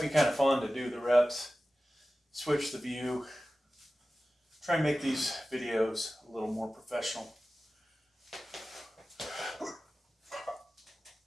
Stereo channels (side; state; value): both; normal; correlation 0.95